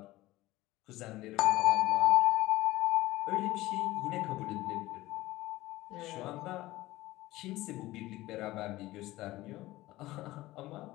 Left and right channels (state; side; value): quieter; right; 17.8 dB